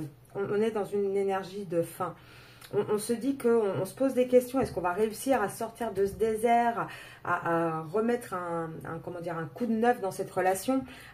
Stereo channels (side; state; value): both; identical; correlation 1.00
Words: on est dans une énergie de fin. on se dit qu'on se pose des questions. Est-ce qu'on va réussir à sortir de ce désert, à remettre comment dire, un coup de neuf dans cette relation,